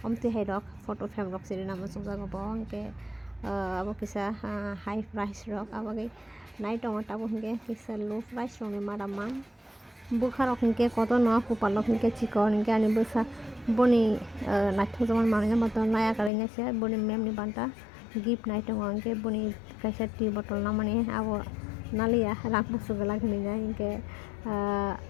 omti hai rok photo frame rok sini na musung jago bo ke abo kisa high price rok abo ke naik tong tabu hingke kisa low price rong ni maraman bukha rok hingke koto no kupal rok hingke chikon hingke ani busa boni naik tong zaman mananya motor naya karenga se boni mem ni banta gift naik tong hingke boni kaisa tea bottle namani abo nalia rang busu gala hingga hingke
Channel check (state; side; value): drops out; right; at 16.3 s